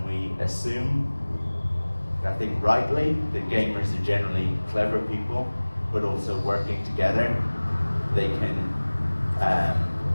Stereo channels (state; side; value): inverted; both; correlation -1.00